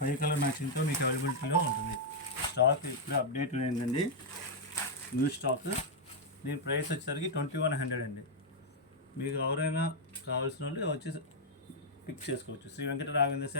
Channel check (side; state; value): both; normal; correlation -0.03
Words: కలర్ మ్యాచింగ్తో మీకు అవైలబిలిటీలో ఉంటుంది. స్టాక్ ఇప్పుడే అప్డేట్ అయిందండి, న్యూ స్టాక్. దీని ప్రైస్ వచ్చేసరికి 2100 అండి. మీకు ఎవరైనా కావాల్సిన వాళ్ళు వచ్చి పిక్ చేసుకోవచ్చు. శ్రీ వెంకట రాఘవేంద్ర